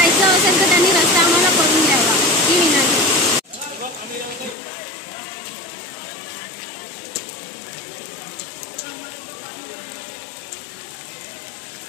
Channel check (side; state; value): right; drops out; at 4.5 s